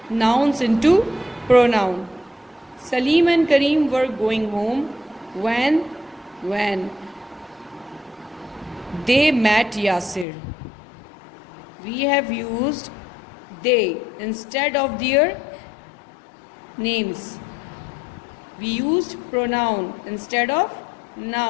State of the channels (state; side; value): drops out; right; at 10.2 s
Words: nouns into pronoun. Salim and Kareem were going home when they met Yasir. We have used they instead of their names. We used pronoun instead of